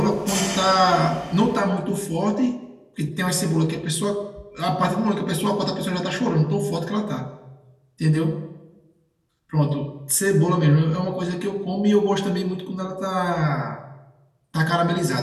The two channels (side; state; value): both; identical; correlation 1.00